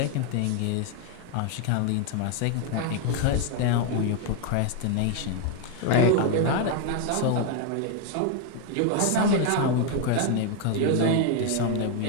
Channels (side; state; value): both; different; correlation 0.01